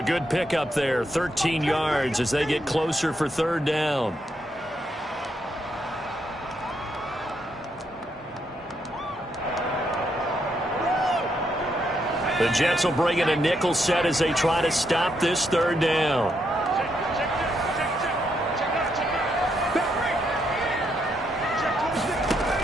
good pickup there, 13 yards as they get closer for 3rd down. The Jets will bring in a nickel set as they try to stop this 3rd down.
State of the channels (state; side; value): normal; both; correlation 0.78